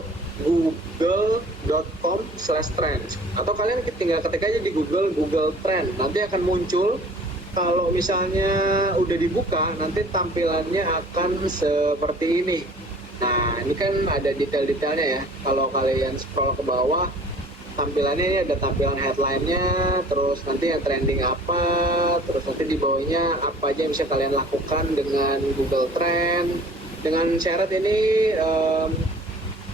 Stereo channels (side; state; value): both; normal; correlation 0.49